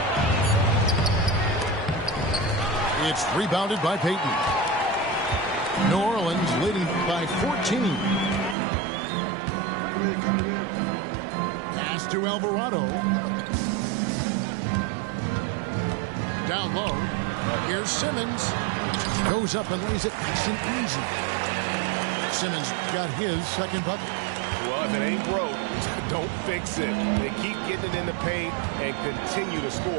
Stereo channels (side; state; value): left; drops out; at 8.6 s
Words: It's rebounded by Payton. New Orleans leading by 14. Pass to Alvarado. Down low. Here's Simmons. Goes up and lays it nice and easy. Simmons got his second bucket. Well, if it ain't broke, don't fix it. They keep getting it in the paint and continue to